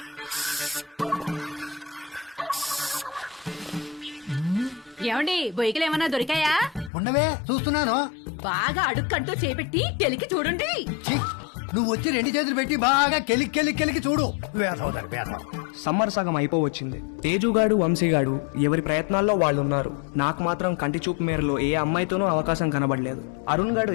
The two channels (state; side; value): drops out; right; at 6.9 s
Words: ఏమండి బొయ్యకలు ఏమన్నా దొరికాయా? ఉండవే చూస్తున్నాను. బాగా అడుక్కంటూ చేపెట్టి కెలికి చూడండి. నువ్వు వచ్చి 2 చేతులు పెట్టి బాగా కెలికి చూడు. వేసవుతారు వేసవ. సమ్మర్ సగం అయిపోవచ్చింది. తేజుగాడు వంశీగాడు ఎవరి ప్రయత్నాల్లో వాళ్ళున్నారు. నాకు మాత్రం కంటి చూపు మేరలో ఏ అమ్మాయితోనూ అవకాశం కనబడలేదు. అరుణ్ గాడు